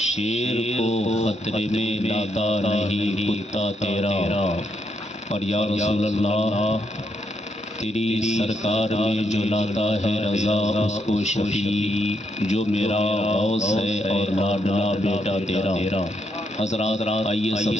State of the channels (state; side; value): normal; both; correlation 0.78